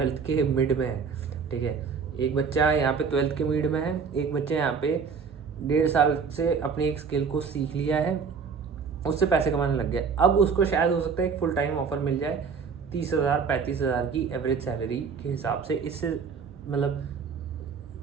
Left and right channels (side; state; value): left; quieter; 5.8 dB